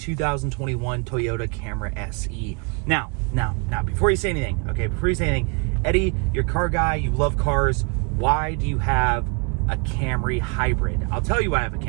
Toyota Camry SE. Now, before you say anything, Eddie, you're a car guy, you love cars. Why do you have a Camry hybrid? I'll tell you why I have a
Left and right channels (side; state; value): left; quieter; 33.2 dB